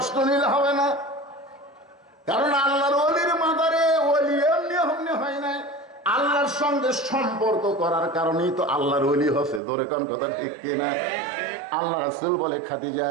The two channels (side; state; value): left; drops out; at 9.6 s